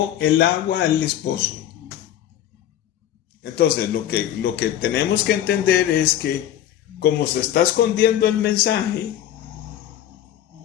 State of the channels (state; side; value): quieter; right; 11.5 dB